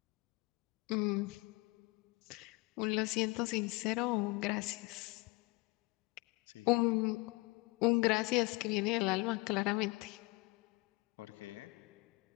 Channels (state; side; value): quieter; right; 25.4 dB